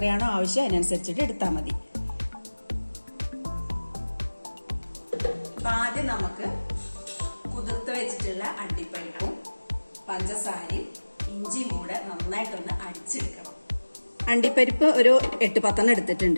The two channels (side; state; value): both; inverted; correlation -1.00